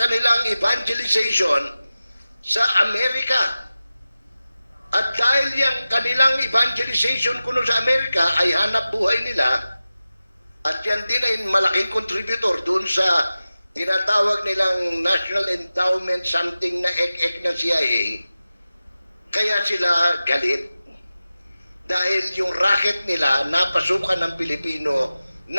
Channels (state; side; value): inverted; both; correlation -0.94